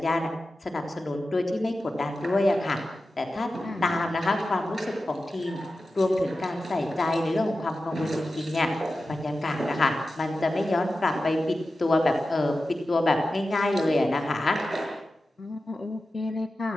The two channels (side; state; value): both; normal; correlation 0.93